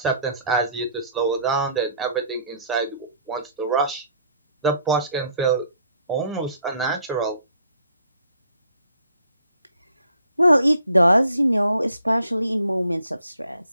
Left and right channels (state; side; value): inverted; both; correlation -0.62